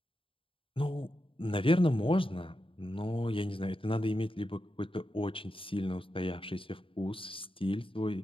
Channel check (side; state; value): right; late; 0.26 ms